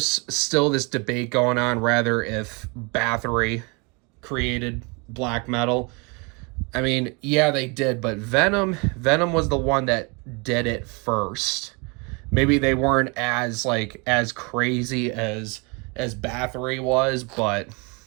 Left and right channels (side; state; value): left; quieter; 30.7 dB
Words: still this debate going on rather if Bathory created Black Metal. I mean, yeah, they did, but Venom was the one that did it first. Maybe they weren't as crazy as Bathory was, but